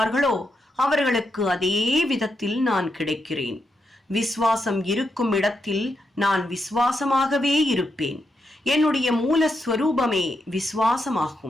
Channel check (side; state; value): both; normal; correlation 0.83